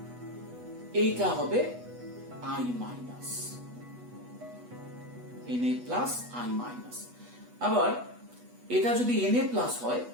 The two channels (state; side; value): late; left; 8.2 ms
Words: এইটা হবে I minus, Na plus I minus. আবার এটা যদি Na প্লাস হয়,